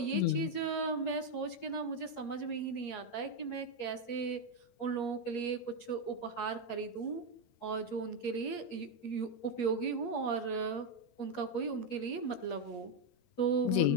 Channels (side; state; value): right; late; 8.4 ms